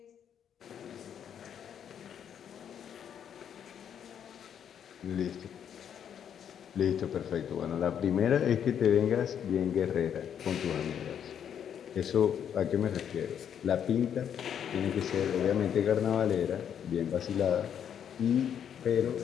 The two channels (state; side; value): quieter; right; 8.7 dB